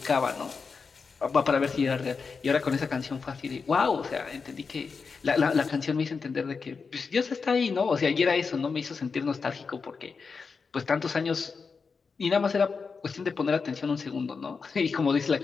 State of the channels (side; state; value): right; quieter; 5.1 dB